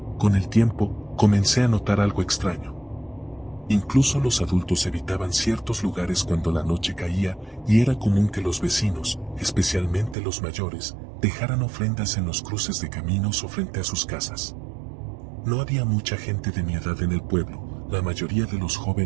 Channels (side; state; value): left; drops out; at 10.2 s